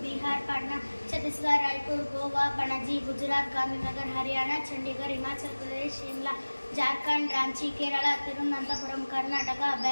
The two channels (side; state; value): both; inverted; correlation -1.00